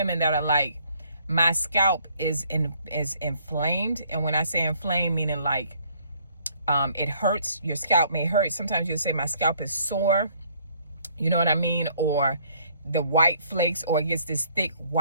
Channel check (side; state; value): both; inverted; correlation -0.63